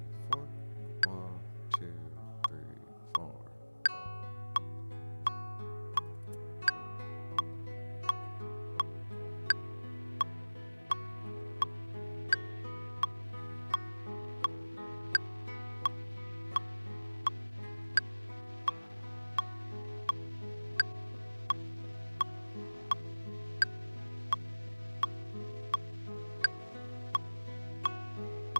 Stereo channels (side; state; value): both; inverted; correlation -1.00